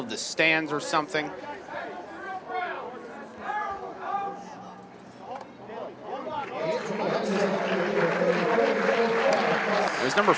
the stands or something. It was number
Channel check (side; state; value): both; identical; correlation 1.00